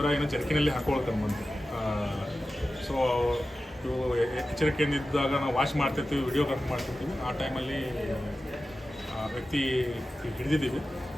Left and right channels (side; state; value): both; normal; correlation 0.94